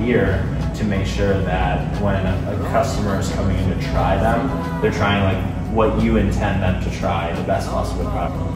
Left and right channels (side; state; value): both; identical; correlation 1.00